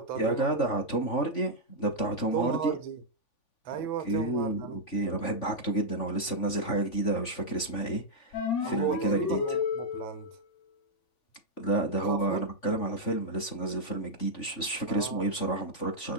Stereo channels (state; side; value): late; right; 3.5 ms